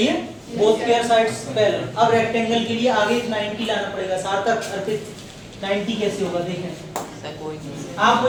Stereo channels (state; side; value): identical; both; correlation 1.00